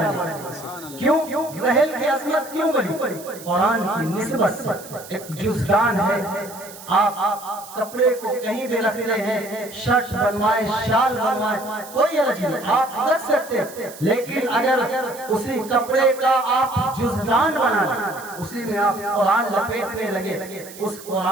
گئی۔ کیوں؟ رحل کی عظمت کیوں بڑھی؟ قرآن کی نسبت سے۔ ایک جزدان ہے، آپ کپڑے کو کہیں بھی رکھتے ہیں، شرٹ بنوائیں، شال بنوائیں، کوئی حرج نہیں، آپ رکھ سکتے ہیں، لیکن اگر اسی کپڑے کا آپ جزدان بنا لیں، اسی میں آپ قرآن لپیٹنے لگے، اس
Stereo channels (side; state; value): right; noise; hiss, 16 dB below the sound